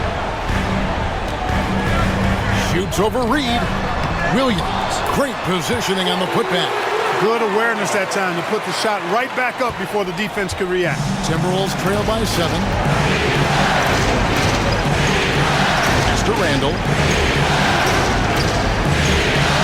Shoots over Reed. Williams, great positioning on the putback. Good awareness that time to put the shot right back up before the defense could react. Timberwolves trail by 7. Pass to Randle.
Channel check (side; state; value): both; identical; correlation 1.00